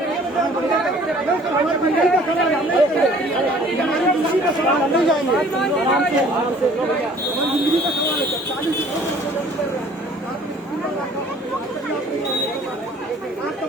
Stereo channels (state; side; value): normal; both; correlation 0.53